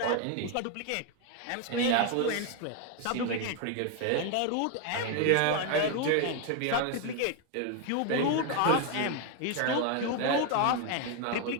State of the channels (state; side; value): different; both; correlation 0.01